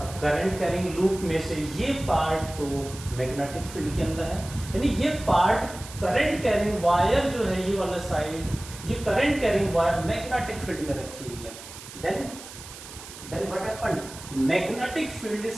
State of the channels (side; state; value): right; noise; hiss, 14 dB below the sound